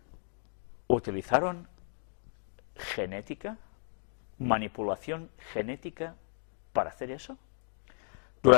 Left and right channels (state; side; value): silent; right; digital silence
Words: Utilizaron genética, manipulación genética para hacer eso.